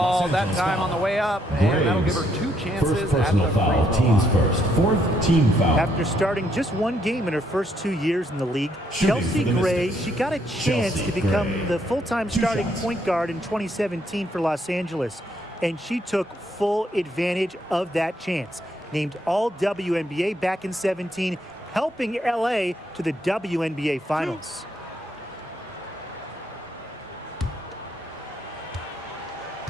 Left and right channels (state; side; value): normal; both; correlation 0.73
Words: that time on the way up, and that'll give her 2 chances first at the personal foul. free throw Teams line. first. 4th team foul. After starting just one game in her first 2 years in the league, Shooting Chelsea for the Gray, Mystics. she got a chance Chelsea to become Gray. the full-time 2 starting shots. point guard in 2017 for Los Angeles, and she took full advantage of that chance. Named all WNBA back in 17, helping LA to the WNBA Finals.